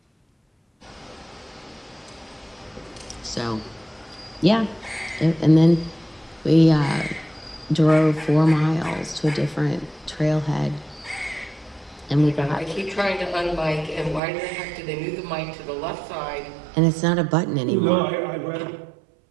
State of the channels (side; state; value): left; drops out; at 14.2 s